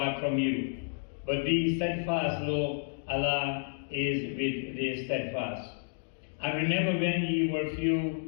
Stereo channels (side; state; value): right; silent; digital silence